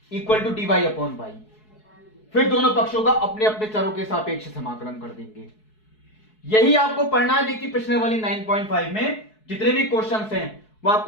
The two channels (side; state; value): right; late; 4.7 ms